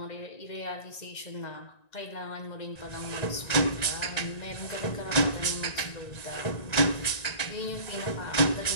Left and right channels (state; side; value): late; right; 1.9 ms